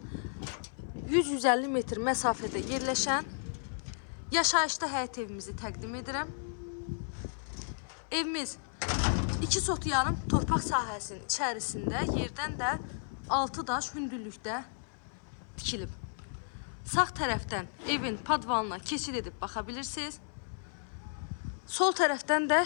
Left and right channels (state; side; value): silent; right; 55 dB below the other